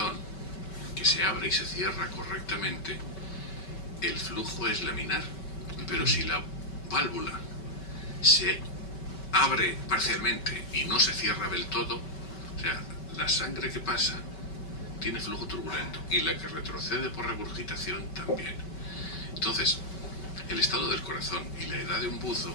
que se abre y se cierra correctamente, el flujo es laminar, pero si la válvula se abre parcialmente y no se cierra del todo, o sea, la sangre que pasa tiene flujo turbulento y la que retrocede por regurgitación también. Entonces, el estado del corazón y la edad de un buzo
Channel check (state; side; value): late; right; 5.2 ms